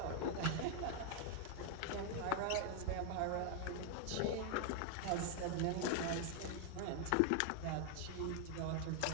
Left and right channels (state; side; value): different; both; correlation 0.00